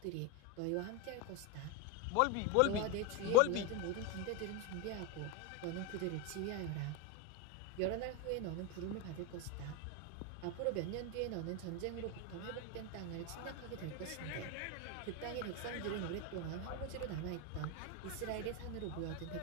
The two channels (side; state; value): both; different; correlation 0.02